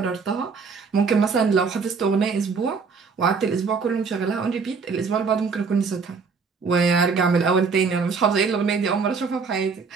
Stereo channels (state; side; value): quieter; left; 5.1 dB